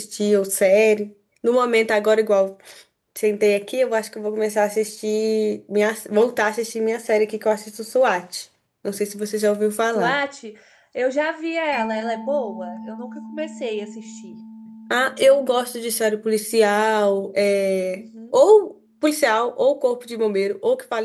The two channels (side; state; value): both; identical; correlation 1.00